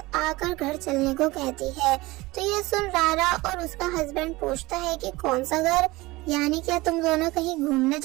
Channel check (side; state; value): left; quieter; 20.8 dB